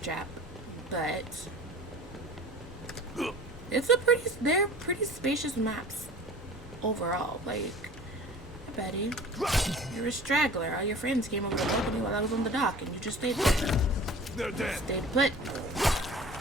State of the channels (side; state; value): both; normal; correlation 0.43